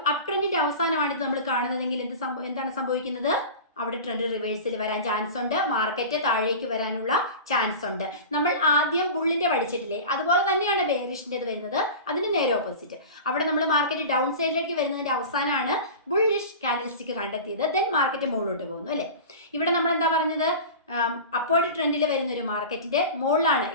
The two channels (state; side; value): inverted; both; correlation -0.33